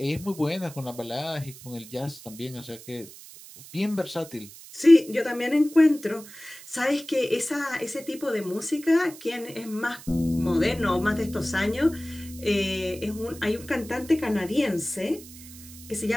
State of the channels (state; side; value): noise; right; hiss, 17 dB below the sound